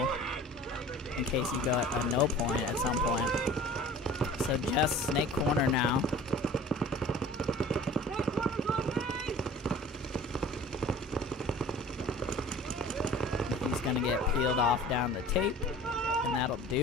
in case you go at a no point at some point. So just Snake corner now. He's going to get peeled off down the tape, and that'll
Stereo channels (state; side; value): normal; both; correlation 0.44